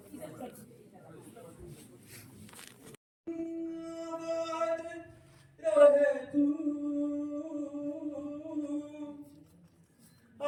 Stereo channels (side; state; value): both; identical; correlation 1.00